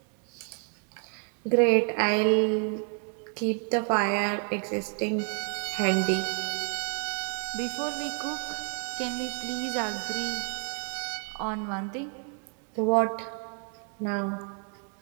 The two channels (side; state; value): left; quieter; 39.3 dB